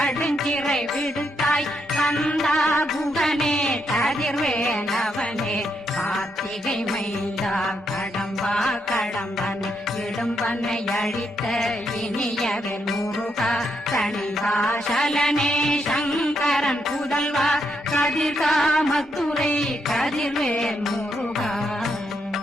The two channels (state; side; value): normal; both; correlation 0.79